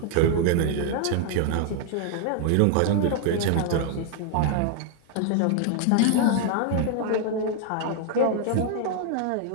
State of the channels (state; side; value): different; both; correlation 0.00